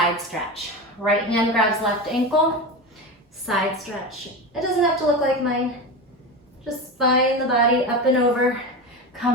stretch. Right hand grabs left ankle, side stretch. It doesn't have to look like mine. Just find the body up and over.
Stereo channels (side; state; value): both; normal; correlation 0.23